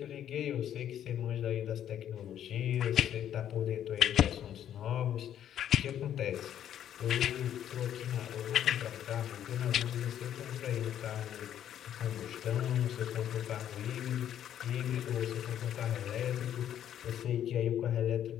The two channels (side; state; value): right; quieter; 10.4 dB